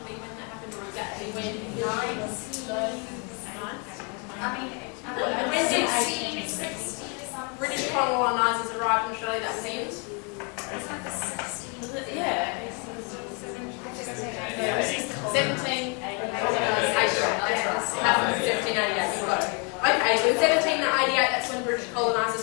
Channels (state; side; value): quieter; right; 35.1 dB